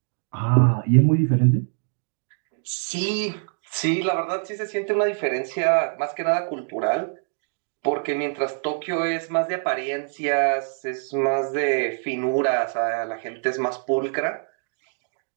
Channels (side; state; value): left; silent; 55 dB below the other